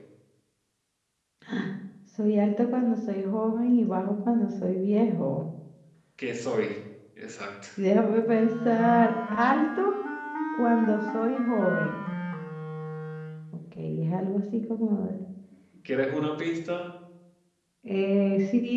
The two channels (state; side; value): identical; both; correlation 1.00